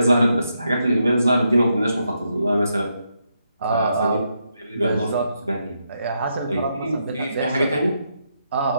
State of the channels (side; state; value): both; inverted; correlation -0.81